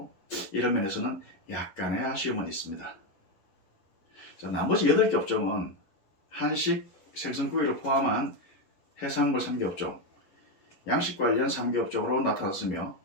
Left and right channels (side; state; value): right; late; 11 ms